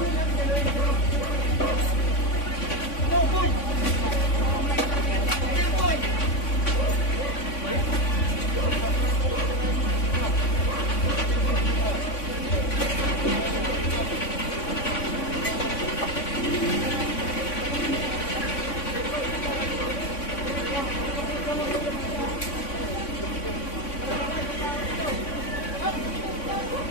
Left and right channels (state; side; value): late; right; 3.5 ms